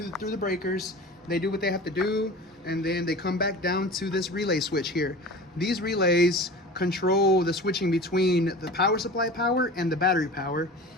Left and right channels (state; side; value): normal; both; correlation 0.36